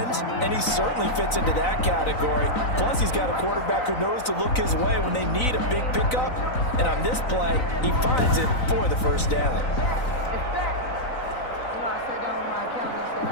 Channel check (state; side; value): late; right; 3.9 ms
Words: and he certainly fits into that category. Plus, he's got a quarterback who knows to look his way when they need a big pickup. And on this play, he finds it for the first down.